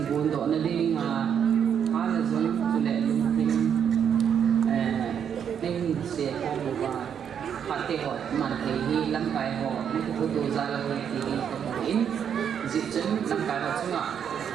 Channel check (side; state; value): left; quieter; 8.2 dB